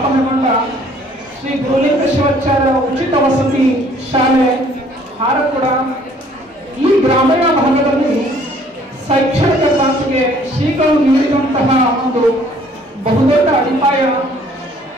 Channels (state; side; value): normal; both; correlation 0.58